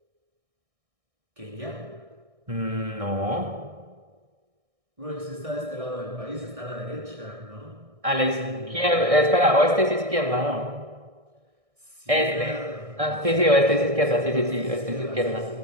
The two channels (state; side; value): late; left; 1.6 ms